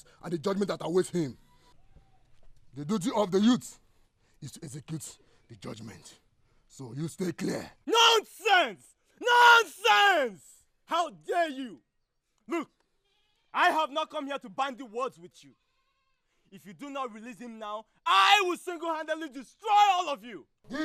and the judgment that awaits him. The duty of the youth is to execute the judgment. So you stay clear. Nonsense! Nonsense! How dare you? Look, I have not come here to bandy words with you. If you do not release him now, I will single-handedly destroy all of you.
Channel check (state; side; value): identical; both; correlation 1.00